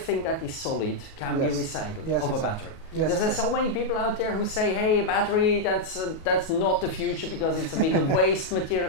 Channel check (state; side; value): late; right; 37 ms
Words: that is solid can be recycled of a battery. Yes, There's so many people out there who say, "Hey, battery, that's not the future because it's a big waste